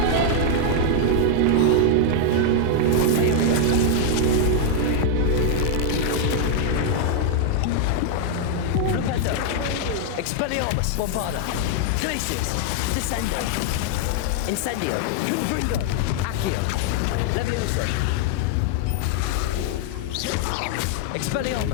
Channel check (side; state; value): both; different; correlation 0.00